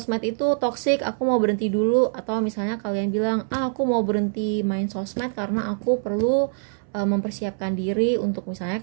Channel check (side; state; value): left; silent; 63 dB below the other